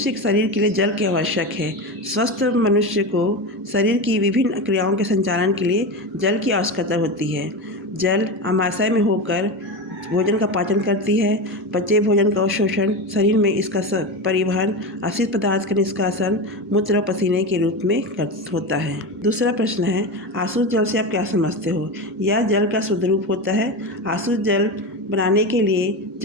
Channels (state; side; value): normal; both; correlation 0.20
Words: शरीर के लिए जल की आवश्यक है। स्वस्थ मनुष्य को शरीर की विभिन्न क्रियाओं के संचालन के लिए जल की आवश्यकता होती है। जल अमाशय में होकर भोजन का पाचन करती है। बचे भोजन का अवशोषण, शरीर में इसका परिवहन, अपशिष्ट पदार्थ का निष्कासन मूत्र और पसीने के रूप में होता है। दूसरा प्रश्न है, आसुत जल से आप क्या समझते हो? यह जल का शुद्ध रूप होता है। आसुत जल बनाने के लिए